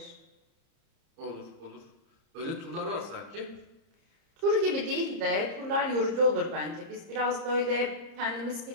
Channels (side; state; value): left; late; 30 ms